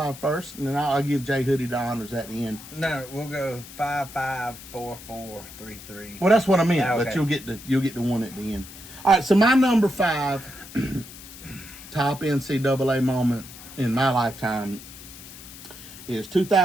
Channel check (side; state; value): left; noise; hiss, 16 dB below the sound